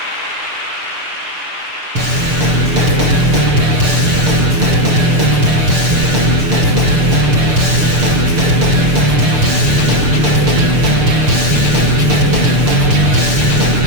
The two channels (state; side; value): late; left; 6.7 ms